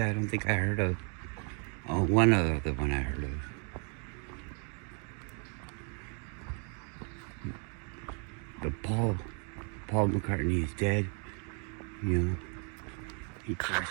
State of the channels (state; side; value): quieter; left; 39.2 dB